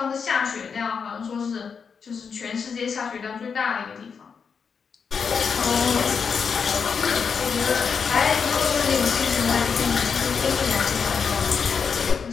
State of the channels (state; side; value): quieter; right; 6.1 dB